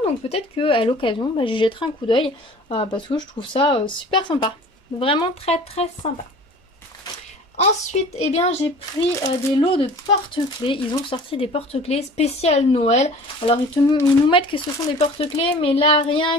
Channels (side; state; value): both; normal; correlation 0.44